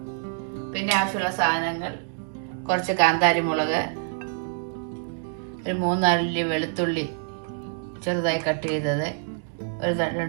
പിന്നെ ആവശ്യമുള്ള സാധനങ്ങൾ: കുറച്ച് കാന്താരി മുളക്, ഒരു 3-4 അല്ലി വെളുത്തുള്ളി ചെറുതായി കട്ട് ചെയ്തത്, ഒരു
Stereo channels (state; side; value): silent; left; digital silence